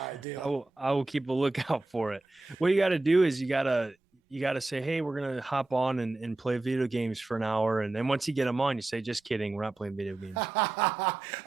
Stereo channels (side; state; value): left; quieter; 3.1 dB